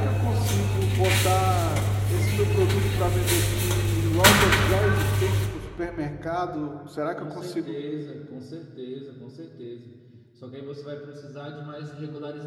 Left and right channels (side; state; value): both; identical; correlation 1.00